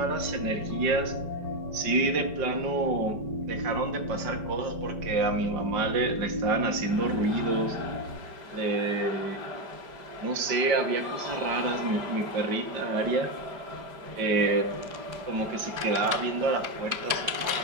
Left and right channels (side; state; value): left; late; 5.1 ms